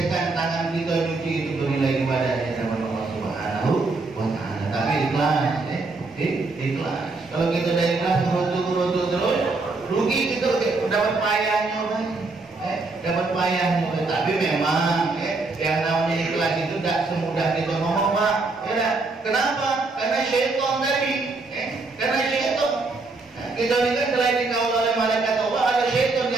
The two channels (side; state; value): left; quieter; 3.6 dB